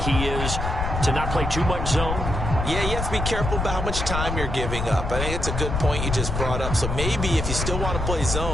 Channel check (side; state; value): left; noise; rumble, 3 dB below the sound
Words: he is to not play too much zone? Yeah, you have to be careful about how much time you're giving up. I think it's a good point you just brought up. So maybe if you still want to play